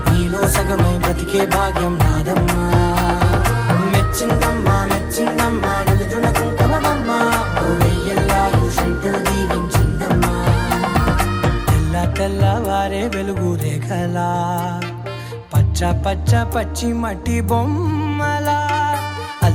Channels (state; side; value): identical; both; correlation 1.00